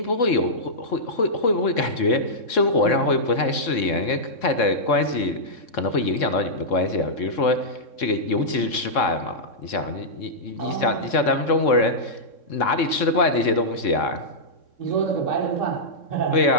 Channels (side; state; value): right; late; 3.6 ms